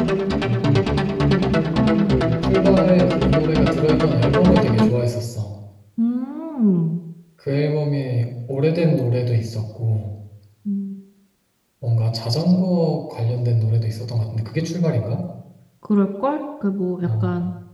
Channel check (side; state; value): both; identical; correlation 1.00